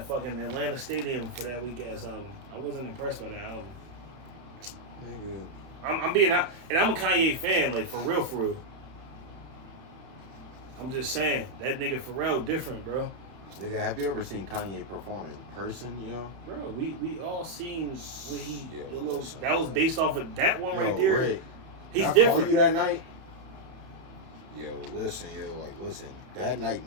fucking Atlanta Stadium for that weak ass album. I wasn't impressed by that album. Nigga. I'm being out, and I'm a Kanye fan, like for real, for real. I'm just saying that nigga Pharrell different, bro. Nigga, have you ever seen Kanye perform in person, yo? Bro, we all seen what he Yeah, the little, that was based off of that one right Yo, there. Rick, He's I different. called you that night. Yo, listen, that night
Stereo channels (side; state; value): left; late; 31 ms